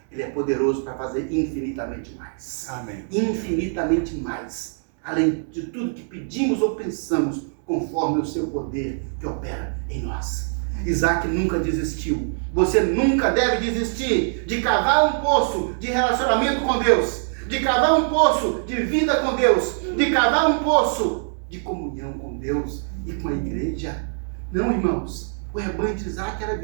ele é poderoso para fazer infinitamente mais. Amém. Infinitamente mais. Além de tudo que pedimos ou pensamos, conforme o seu poder que opera em nós. Isaac nunca desistiu. Você nunca deve desistir de cavar um poço de relacionamento com Deus, de cavar um poço de vida com Deus, de cavar um poço de comunhão com Deus e com a igreja. Não, irmãos, o rebanho de Isaac era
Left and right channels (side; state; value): left; silent; 63 dB below the other